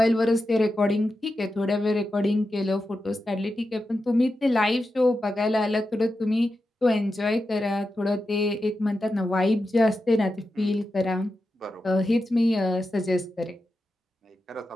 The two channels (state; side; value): normal; both; correlation 0.90